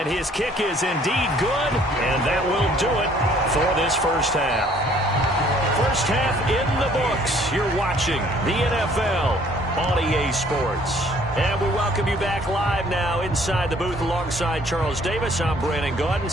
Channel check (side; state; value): both; normal; correlation 0.59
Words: his kick is indeed good, and that will do it for this first half. First half in the books. You're watching the NFL on EA Sports. And we welcome you back live now inside the booth alongside Charles Davis. I'm Brandon Gaudin,